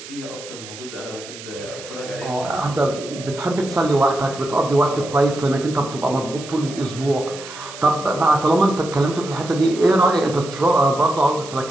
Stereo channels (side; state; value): right; noise; hiss, 14 dB below the sound